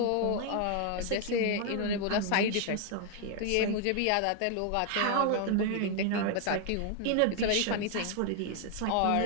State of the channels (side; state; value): both; different; correlation 0.00